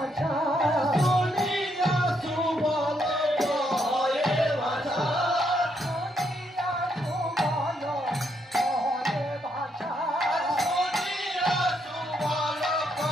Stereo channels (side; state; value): both; normal; correlation 0.76